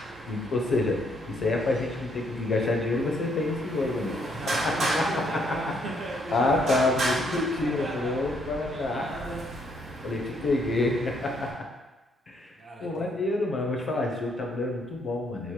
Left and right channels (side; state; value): both; normal; correlation 0.71